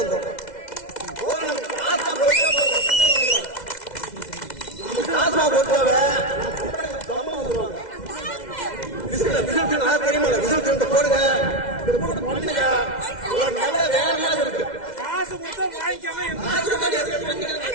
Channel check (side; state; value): right; late; 2.0 ms